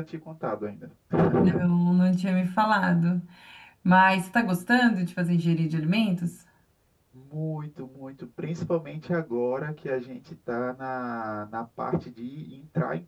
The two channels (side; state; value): both; identical; correlation 1.00